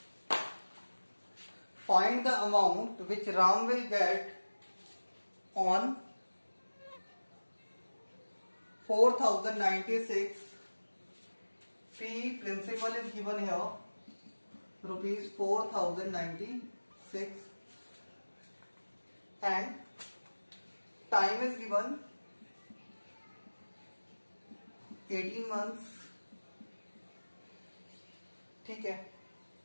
Find the amount which Ram will get on 4096. P principal is given here, rupees 4096, and time is given 18 months. ठीक है,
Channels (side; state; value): both; inverted; correlation -1.00